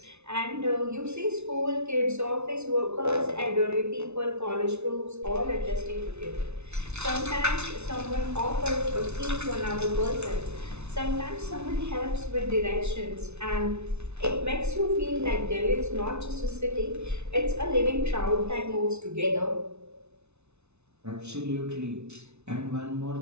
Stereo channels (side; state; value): left; late; 0.81 ms